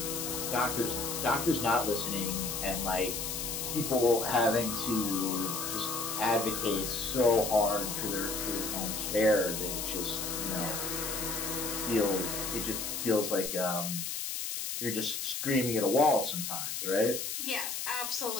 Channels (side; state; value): left; noise; hiss, 3 dB below the sound